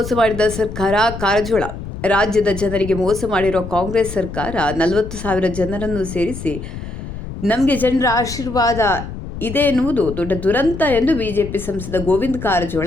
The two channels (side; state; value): left; noise; rumble, 9 dB below the sound